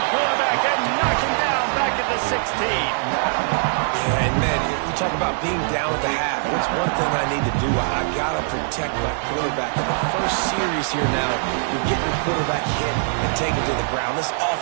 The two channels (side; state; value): left; silent; digital silence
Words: quarterback and knock him down back at the 16. Yeah, and man, you talk about being down at the half. What's one thing I need to do? I got to protect my quarterback. In the first series here now, you get your quarterback hit and take it to the ground. This